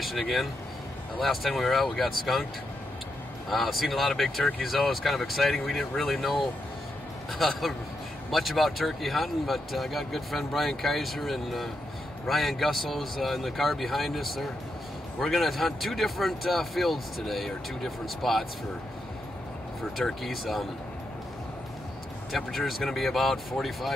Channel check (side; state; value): both; normal; correlation 0.83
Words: again. Last time we were out we got skunked. Seen a lot of big turkeys though. It's kind of exciting. We didn't really know much about turkey hunting, but I got good friend Brian Kaiser and Ryan Gusso's in the car behind us. We're going to hunt two different fields today, or two different spots for turkeys. Temperature is going to be about